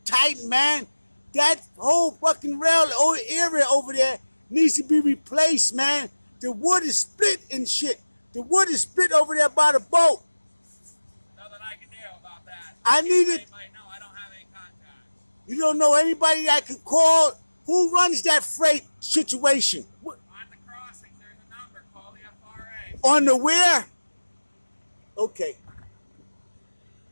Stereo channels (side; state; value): both; inverted; correlation -1.00